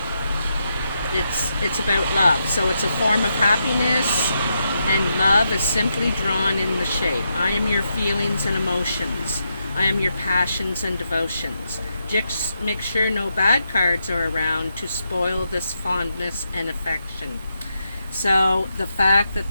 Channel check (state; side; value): inverted; both; correlation -0.83